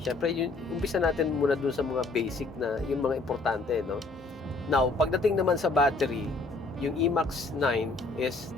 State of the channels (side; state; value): right; quieter; 3.5 dB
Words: Syempre, yun, umpisa natin muna dun sa mga basic na, yung mga importante, no? Now, pagdating naman sa battery, yung E-MAX 9 is